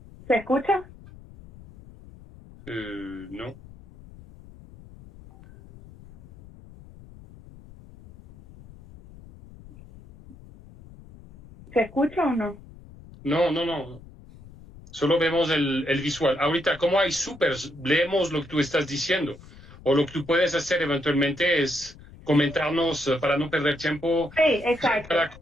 ¿Se escucha? No. ¿Se escucha o no? No. Solo vemos el visual. Ahorita, como hay supers, leemos lo que tú estás diciendo. O lo que tú puedes hacer eventualmente es comentarnos, para no perder tiempo, Sí, exacto. para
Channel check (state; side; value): noise; left; rumble, 20 dB below the sound